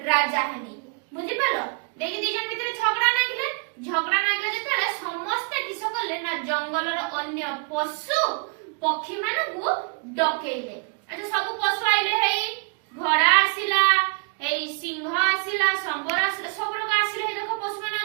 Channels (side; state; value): left; quieter; 36.7 dB